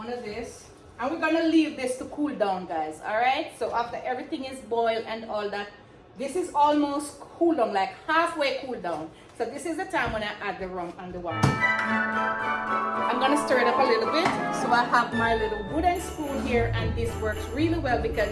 of this. And we're gonna leave this to cool down, guys. Alright? So after everything is boiled and all that, this is almost cool down, like halfway cool down. So this is the time when I add the rum and the wine. I'm gonna stir it up a little bit. So I have my little wooden spoon here, and this works really well because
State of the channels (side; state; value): both; identical; correlation 1.00